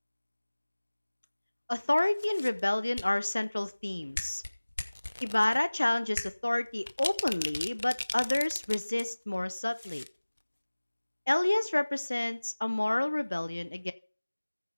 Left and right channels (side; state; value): both; inverted; correlation -1.00